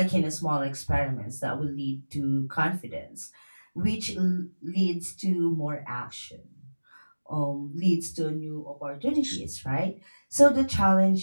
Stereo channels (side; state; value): both; inverted; correlation -1.00